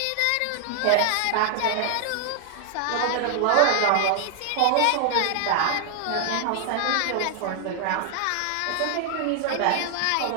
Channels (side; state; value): both; different; correlation 0.00